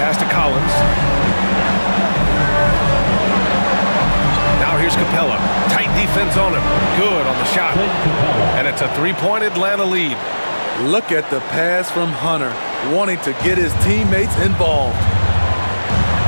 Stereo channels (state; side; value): inverted; both; correlation -1.00